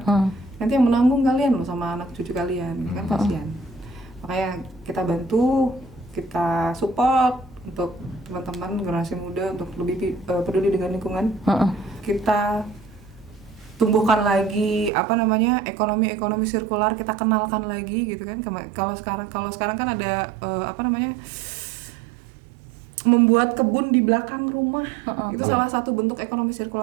nanti yang menanggung kalian loh sama anak cucu kalian, kan kasihan. Makanya kita bantu, kita support untuk teman-teman generasi muda untuk lebih peduli dengan lingkungan. Kita tumbuhkan lagi ekonomi sirkular, kita kenalkan lagi gitu kan. Kalau sekarang kan ada membuat kebun di belakang rumah, itu salah satu bentuk ekonomi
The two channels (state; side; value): drops out; left; at 14.9 s